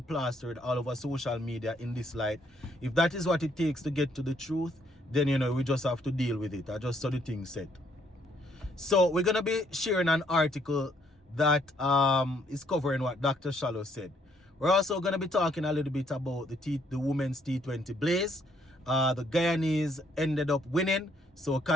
plastered all over social media in this light, if that is what it takes to get to the truth, then, you know, we just have to deal with it. I just saw the thing said. So we're going to be sharing an article that is covering what Dr. Shallow said. We're also going to be talking a little bit about the women's T20 Blaze. The Guyanese ended up winning, so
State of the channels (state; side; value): normal; both; correlation 0.68